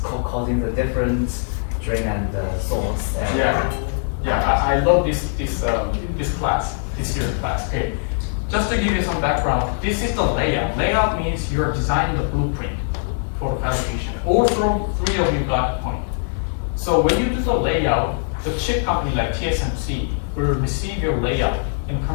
causing the different drain and source. And yeah, I love this class, this year's class. Okay, just to give you some background, this is the layout. Layout means you're designing the blueprint for the fabrication. All 3 of you got the point. So when you do the layout, the chip company like TSMC will receive your layout and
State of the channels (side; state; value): right; silent; 61 dB below the other